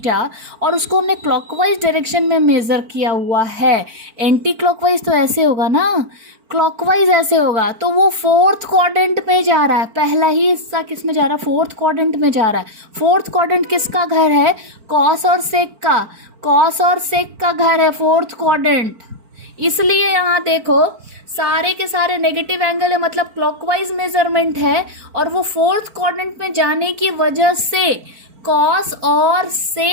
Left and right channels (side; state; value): left; late; 4.4 ms